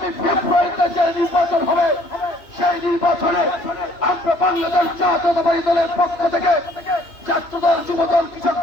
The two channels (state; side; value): late; right; 2.8 ms